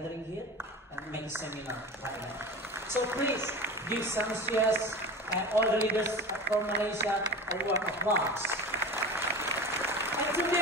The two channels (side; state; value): both; normal; correlation 0.32